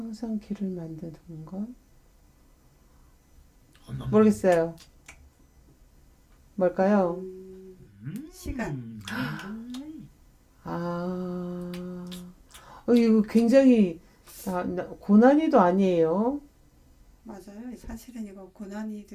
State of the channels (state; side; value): identical; both; correlation 1.00